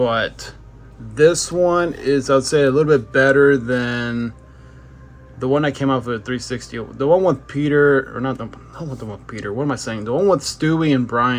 this one is, I'd say, a little bit better than the one I came out with 360. The one with Peter, or not the one with Peter. What am I saying? The one with Stewie and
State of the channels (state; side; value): identical; both; correlation 1.00